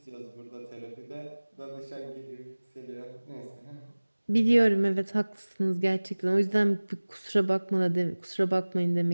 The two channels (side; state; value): both; inverted; correlation -1.00